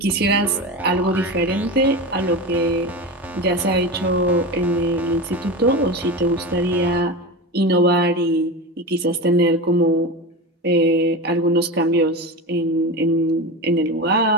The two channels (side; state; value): both; normal; correlation 0.24